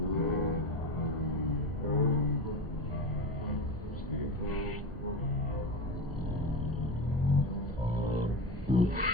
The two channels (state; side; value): normal; both; correlation 0.23